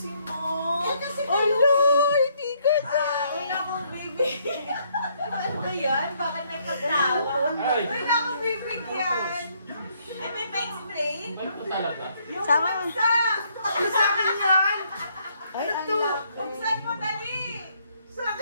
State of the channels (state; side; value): inverted; both; correlation -0.70